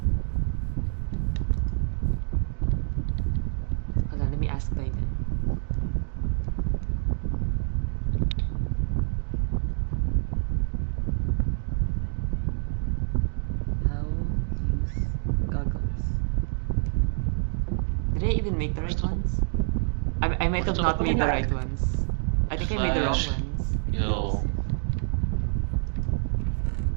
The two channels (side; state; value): left; silent; 60 dB below the other